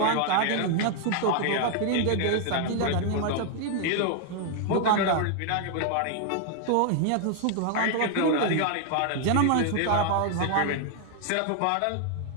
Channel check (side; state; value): both; different; correlation 0.00